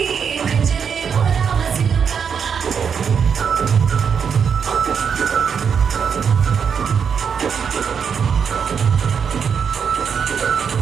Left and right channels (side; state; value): left; quieter; 6.9 dB